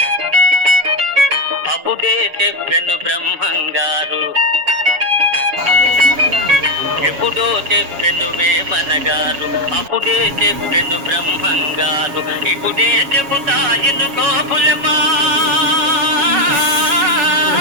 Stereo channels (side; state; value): left; late; 7.2 ms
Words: అప్పుడే చెప్పెను బ్రహ్మంగారు. ఎప్పుడో చెప్పెను వేమనగారు, అప్పుడే చెప్పెను బ్రహ్మంగారు. ఇప్పుడే చెబుతాయిను గోపులమా,